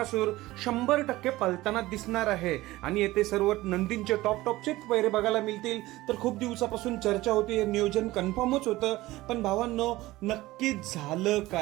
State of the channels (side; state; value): left; quieter; 18.1 dB